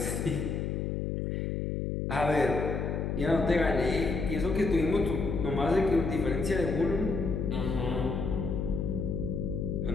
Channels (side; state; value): left; noise; hum, 1 dB below the sound